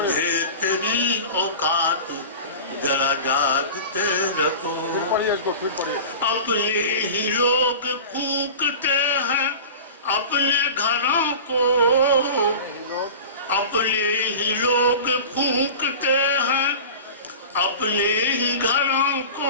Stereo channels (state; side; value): inverted; both; correlation -0.35